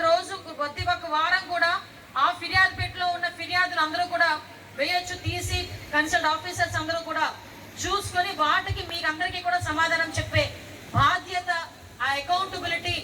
రోజు, ప్రతి ఒక్క వారం కూడా ఆ ఫిర్యాదు పెట్టెలో ఉన్న ఫిర్యాదులు అందరూ కూడా వేయొచ్చు, తీసి కన్సల్ట్ ఆఫీసర్స్ అందరూ కూడా చూసుకొని వాటికి మీకు అందరికీ కూడా సమాధానం చెప్పే బాధ్యత, ఆ అకౌంటబిలిటీ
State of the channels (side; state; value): both; identical; correlation 1.00